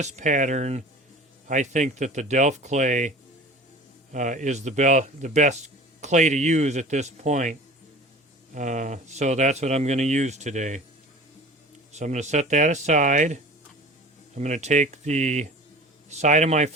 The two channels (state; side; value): normal; both; correlation 0.41